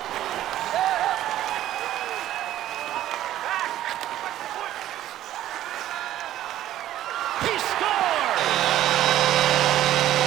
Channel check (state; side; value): quieter; left; 13.0 dB